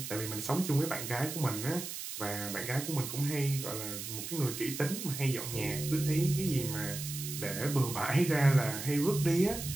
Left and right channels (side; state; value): right; noise; hiss, 7 dB below the sound